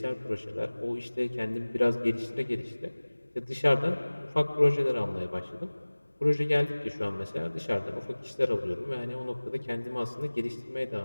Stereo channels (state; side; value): inverted; both; correlation -1.00